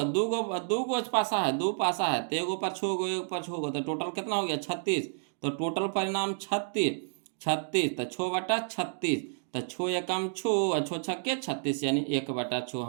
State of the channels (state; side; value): silent; left; digital silence